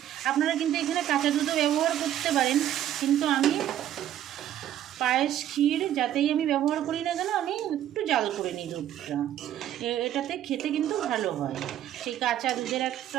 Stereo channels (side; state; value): left; quieter; 11.5 dB